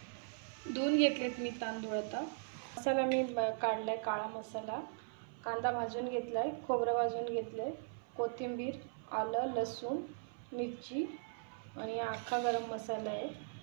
धुवून घेतलेत मी तांदूळ। आता मसाला मी काढलाय, काळा मसाला, कांदा भाजून घेतलाय, खोबरं भाजून घेतलंय, कोथिंबीर, आलं, लसूण, मिरची आणि अख्खा गरम मसाला आहे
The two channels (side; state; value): left; silent; 52 dB below the other